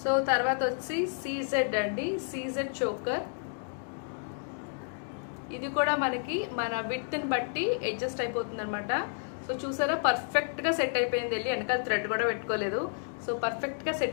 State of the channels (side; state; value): right; silent; digital silence